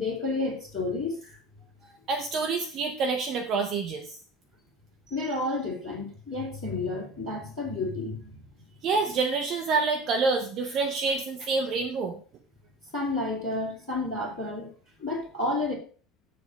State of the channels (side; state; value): both; normal; correlation 0.34